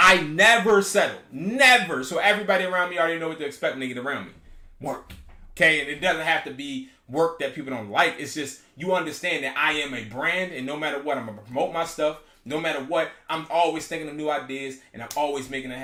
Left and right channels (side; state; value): both; identical; correlation 1.00